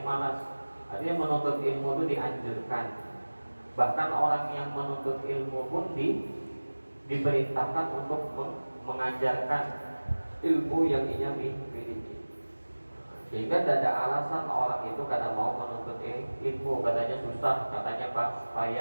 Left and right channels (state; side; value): inverted; both; correlation -1.00